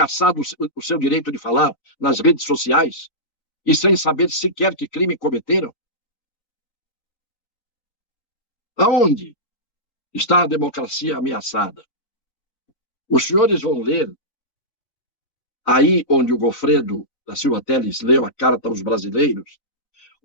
o seu direito de falar nas redes sociais e sem saber sequer que crime cometeram? Aonde está a democracia ameaçada? Os senhores vão ler, aí onde o Goffredo da Silva Telles leu a Carta aos Brasileiros,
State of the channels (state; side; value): late; right; 4.0 ms